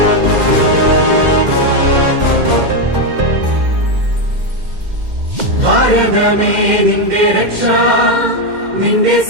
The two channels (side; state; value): left; late; 2.1 ms